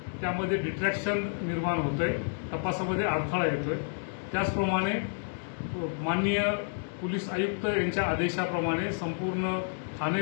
त्यामध्ये डिस्ट्रॅक्शन निर्माण होतंय, तपासामध्ये अडथळा येतोय। त्याचप्रमाणे माननीय पोलीस आयुक्त यांच्या आदेशाप्रमाणे संपूर्ण ठाणे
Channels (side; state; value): right; silent; digital silence